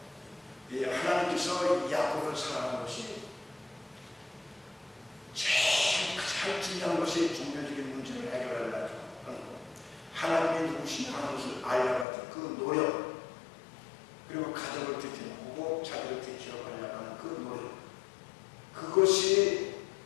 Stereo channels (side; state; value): right; drops out; at 12.1 s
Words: 하나님께서 야곱을 사랑하는 것이 제일 가장 중요한 것이 종교적인 문제를 해결하려고 하는 것. 하나님이 누구시냐 하는 것을 알려고 했던 그 노력, 그리고 가족을 지켜보고 자기를 지켜가려고 하는 그 노력, 그것이